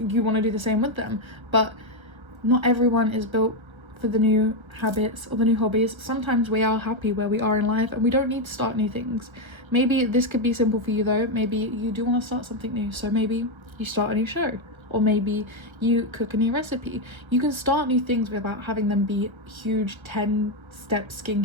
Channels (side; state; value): left; late; 1.3 ms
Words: to do the same with them. But not everyone is built for the new habits or the new hobbies. Sometimes we are happy where we are in life and we don't need to start new things. Maybe this could be simple for you though. Maybe you do want to start something new, so maybe you start a new show, or maybe you cook a new recipe. You can start new things without having them be huge 10-step